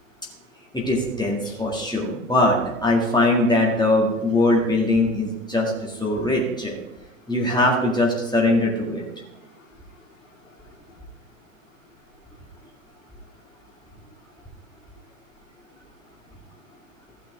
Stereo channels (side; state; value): both; normal; correlation 0.44